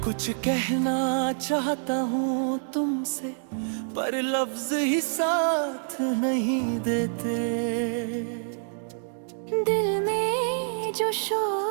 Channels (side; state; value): left; silent; digital silence